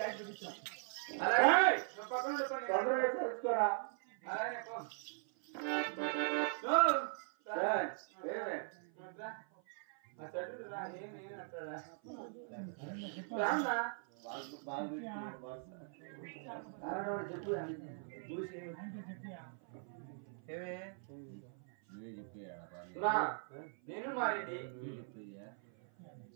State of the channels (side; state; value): left; silent; 51 dB below the other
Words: విడిచాం తెలుసుకోరా అలాగే చెప్పు నేను మారెడ్డి